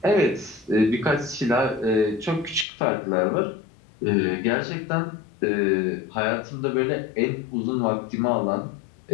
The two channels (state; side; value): drops out; right; at 2.7 s